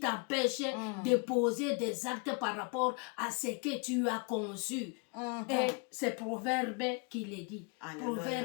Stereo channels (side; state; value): right; quieter; 32.0 dB